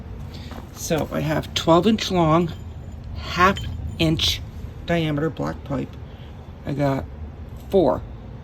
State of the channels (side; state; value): both; identical; correlation 1.00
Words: So I have 12-inch long, 1/2 inch diameter black pipe. I got four